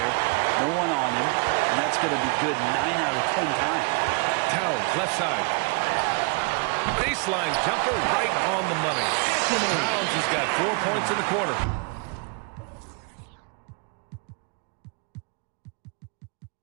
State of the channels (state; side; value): quieter; left; 32.7 dB